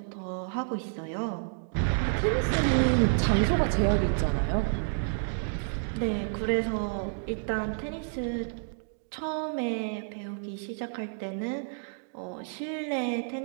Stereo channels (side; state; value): left; silent; digital silence